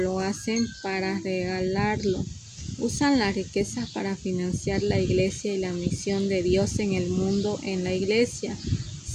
Usan las riquezas para financiar la iglesia y la misión de Dios en el mundo en la iglesia.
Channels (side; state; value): both; identical; correlation 1.00